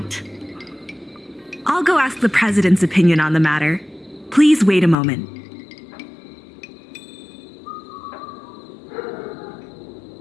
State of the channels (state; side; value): drops out; right; at 5.0 s